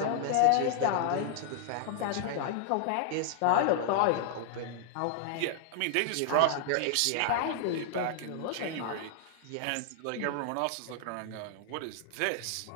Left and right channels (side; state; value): both; different; correlation -0.01